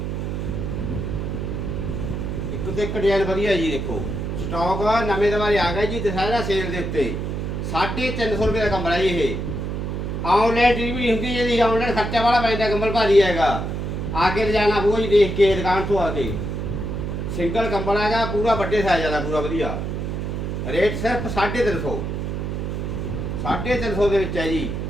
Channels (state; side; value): noise; right; hum, 3 dB below the sound